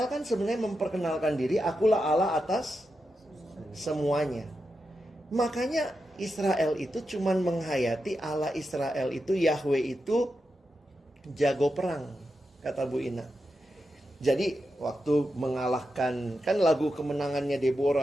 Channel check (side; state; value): both; normal; correlation 0.88